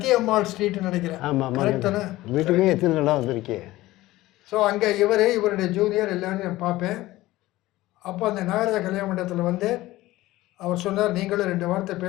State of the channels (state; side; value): quieter; right; 17.4 dB